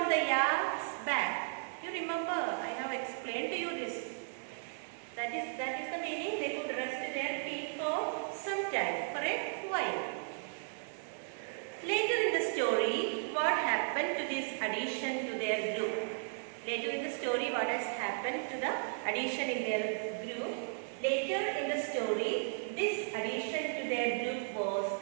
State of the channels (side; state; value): left; silent; digital silence